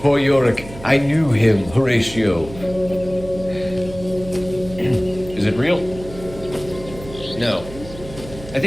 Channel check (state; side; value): noise; right; hum, 15 dB below the sound